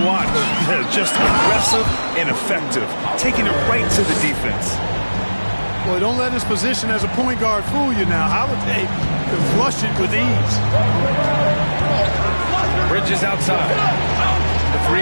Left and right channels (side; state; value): both; inverted; correlation -1.00